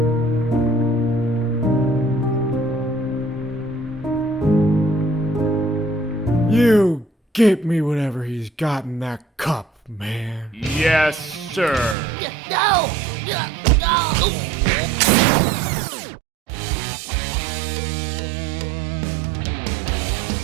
get me whatever he's got in that cup, man. Yes, sir. No!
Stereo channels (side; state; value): left; drops out; at 12.0 s